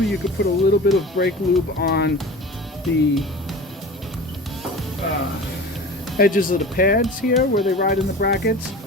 could put a little bit of brake lube on the edges of the pads here where they ride in the brackets.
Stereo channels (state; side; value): normal; both; correlation 0.36